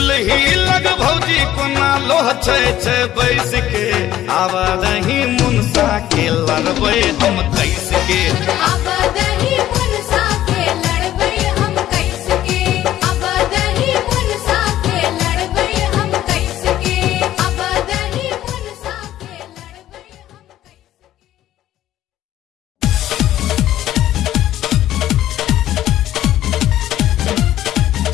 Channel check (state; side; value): quieter; right; 13.0 dB